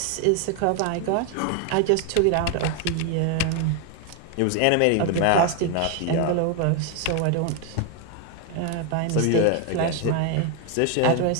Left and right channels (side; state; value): both; different; correlation 0.01